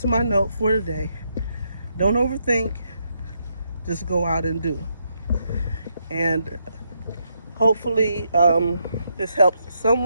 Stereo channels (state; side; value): inverted; both; correlation -0.79